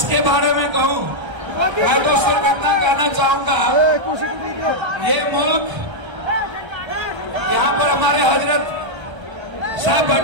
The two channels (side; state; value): left; late; 1.3 ms